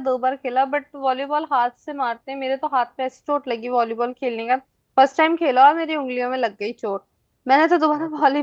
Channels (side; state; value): both; identical; correlation 1.00